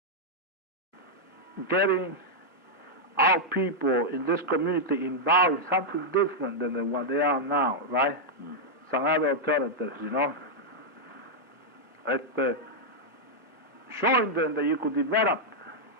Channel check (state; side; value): normal; both; correlation -0.05